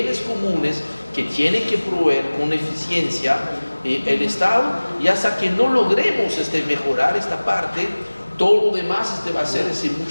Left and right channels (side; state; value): both; inverted; correlation -1.00